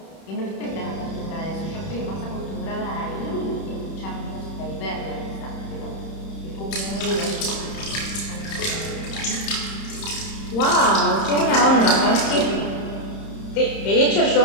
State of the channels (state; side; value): late; right; 31 ms